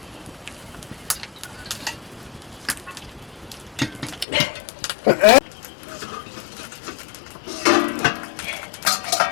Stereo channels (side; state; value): right; drops out; at 4.2 s